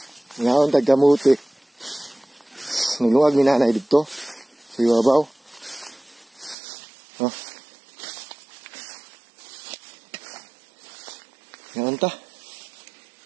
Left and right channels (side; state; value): left; drops out; at 6.6 s